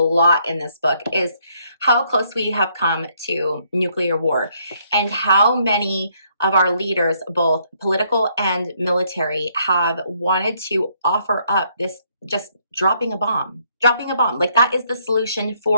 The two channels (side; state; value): both; inverted; correlation -0.70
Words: in this book is how close we have come to nuclear war, and how many of our leaders, both political and military, have wanted to offer up this just dropping a bomb. Like that is the solution